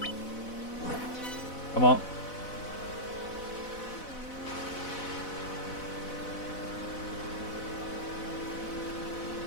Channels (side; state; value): right; late; 4.1 ms